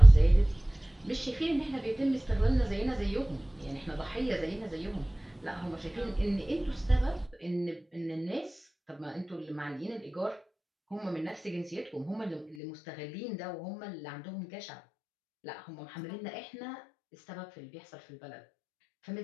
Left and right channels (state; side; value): drops out; right; at 12.6 s